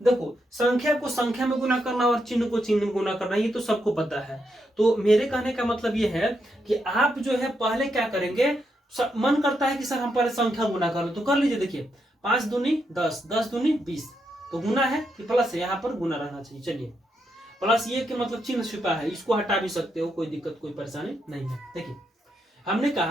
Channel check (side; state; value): both; normal; correlation 0.81